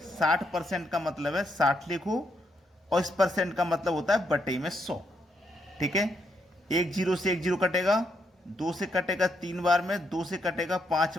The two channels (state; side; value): normal; both; correlation 0.78